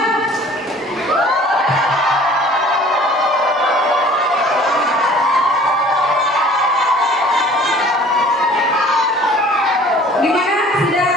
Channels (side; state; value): both; normal; correlation 0.49